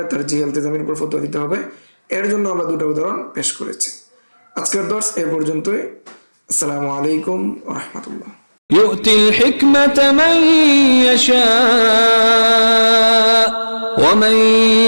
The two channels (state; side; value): inverted; both; correlation -1.00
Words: তারজিহে ইলতিজামির উপর ফতোয়া দিতে হবে। এর জন্য আমরা দুটা উদাহরণ পেশ করেছি। আজকের দর্স এ পর্যন্তই। আসসালামু আলাইকুম ওয়া রাহমাতুল্লাহ। يؤتي الحكمة من يشاء ومن